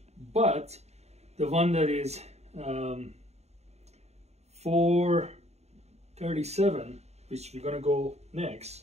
But the one that is $437, which we're gonna go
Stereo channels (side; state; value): left; late; 0.31 ms